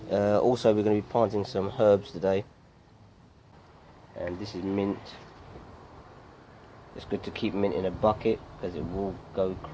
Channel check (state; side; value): identical; both; correlation 1.00